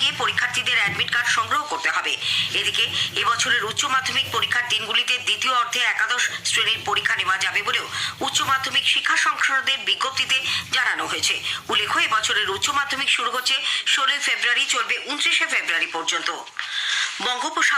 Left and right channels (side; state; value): both; identical; correlation 1.00